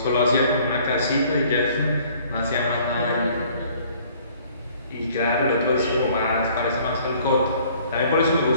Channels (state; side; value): inverted; both; correlation -0.57